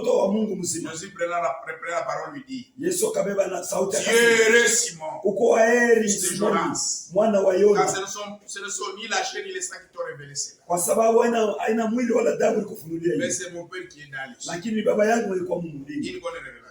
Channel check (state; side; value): identical; both; correlation 1.00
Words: wa Mungu mzima. Jésus prenant la parole lui dit. Yesu akabeba na sauti akasema. Heureux Simon. Uko heri Simoni, mwana wa Yona. Car ce ne sont ni la chair ni le sang qui t'ont révélé cela. Kwa sababu haina mwili wala damu ilikufunulia hiyo. Mais c'est mon Père qui est dans les cieux. Lakini baba yangu alikuwa Mungu mbinguni. Une bonne